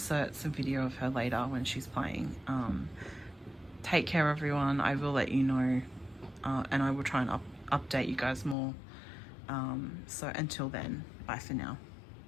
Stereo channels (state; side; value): drops out; right; at 8.6 s